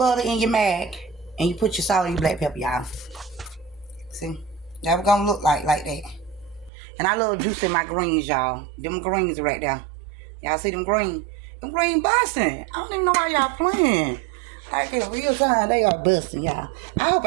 in your mag, and you put your salt and your black pepper, y'all. See? That was gonna look like that. And I love juicing my greens, y'all. Them greens right there. Y'all see them green? Them green busting. I don't even know why y'all playing. Like in real time, they are busting, y'all. I hope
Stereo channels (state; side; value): drops out; left; at 6.7 s